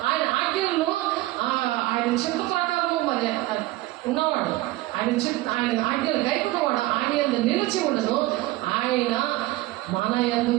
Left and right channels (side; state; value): left; quieter; 18.4 dB